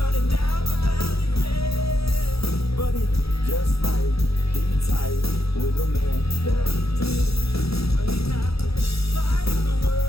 down the valley red. But he just might be tight with a man that did. But he's not the light of the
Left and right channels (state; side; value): late; right; 0.77 ms